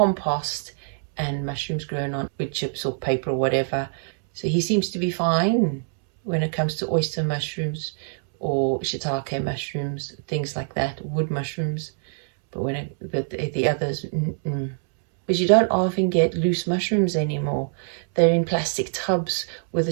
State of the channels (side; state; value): left; silent; 62 dB below the other